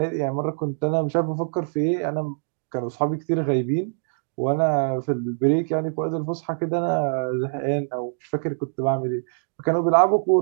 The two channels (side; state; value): left; silent; digital silence